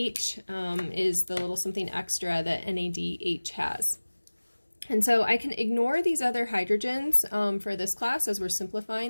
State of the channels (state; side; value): inverted; both; correlation -1.00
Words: is the little something extra that NADH has. And so I can ignore these other hydrogens for this class as we're